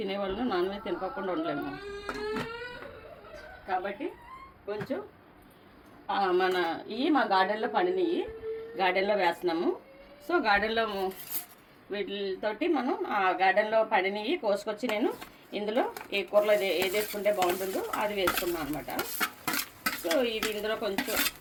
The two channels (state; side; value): identical; both; correlation 1.00